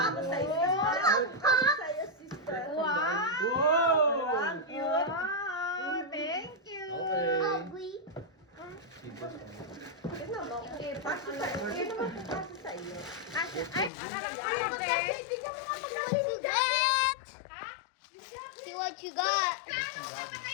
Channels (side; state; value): right; drops out; at 13.9 s